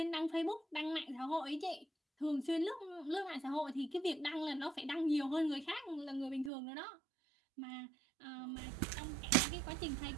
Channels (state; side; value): drops out; left; at 6.5 s